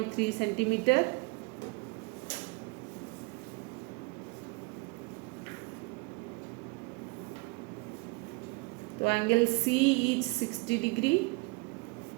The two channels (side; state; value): left; quieter; 25.6 dB